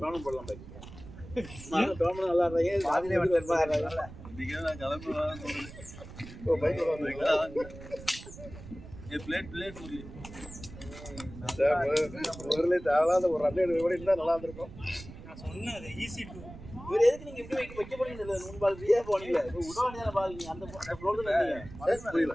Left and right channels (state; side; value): noise; right; rumble, 15 dB below the sound